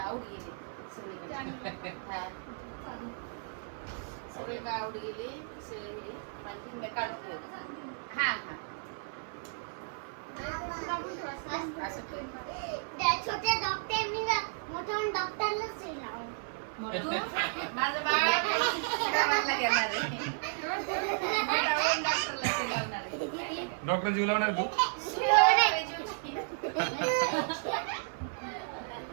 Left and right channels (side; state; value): left; silent; 56 dB below the other